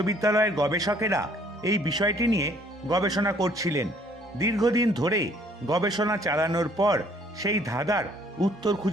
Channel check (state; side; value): normal; both; correlation 0.60